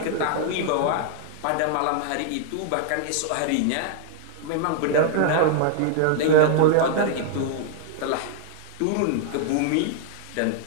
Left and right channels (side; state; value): both; different; correlation 0.00